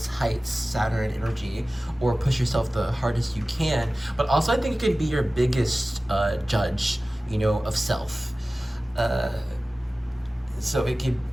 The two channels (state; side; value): normal; both; correlation 0.97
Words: heights, Saturn energy, or push yourself the hardest you can. But also I think it could be your biggest judge, of self. So it could